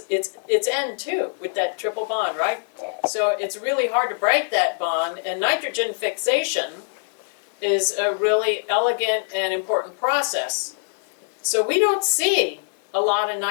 it's N2 with that triple bond, right? So it's really hard to break that bond, and nitrogen fixation is a really elegant and important process. So we don't see a lot of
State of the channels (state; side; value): silent; right; digital silence